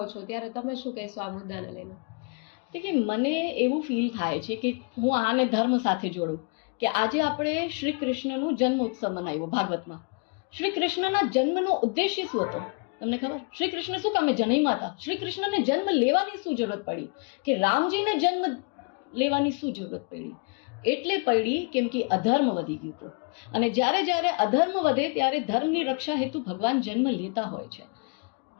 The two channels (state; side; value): quieter; right; 34.9 dB